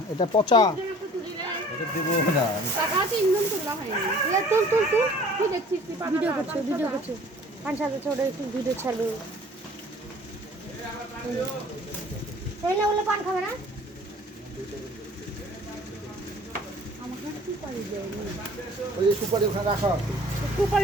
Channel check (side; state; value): both; normal; correlation 0.50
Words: এটা পচা। এটা দেবো না। টাকাতে ইনকাম করলা হয়নি। তুল তুল তুল তুই দেখছিস ভিডিও করছো পাঁচ সাত বছর একটু ভিডিও ছাড়বে। তাই না বলে পান খাবে না? আমাকে সুপারি দেয়নি। ওই যে সুপারি ওখানে রাখা আছে।